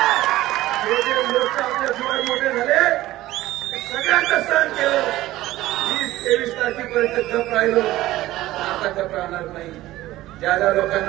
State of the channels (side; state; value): left; quieter; 16.2 dB